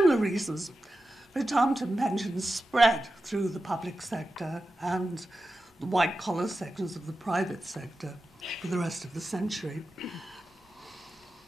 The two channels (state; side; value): normal; both; correlation 0.92